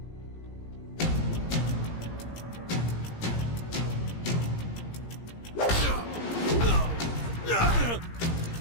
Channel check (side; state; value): right; late; 17 ms